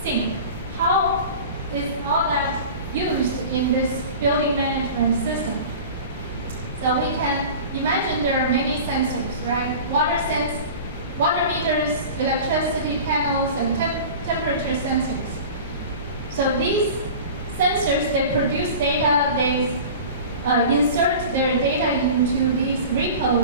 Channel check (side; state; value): both; inverted; correlation -0.37